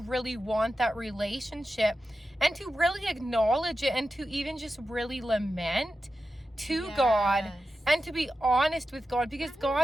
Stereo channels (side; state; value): both; normal; correlation 0.91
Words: want that relationship. And to really acknowledge it and to even just really lament to God. And to be honest with God, because